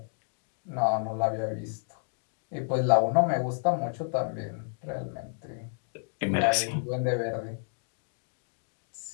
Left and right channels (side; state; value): right; silent; 57 dB below the other